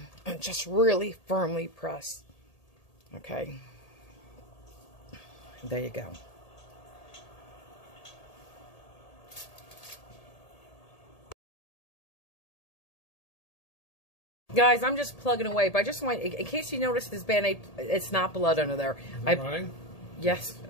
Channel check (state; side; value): late; right; 1.8 ms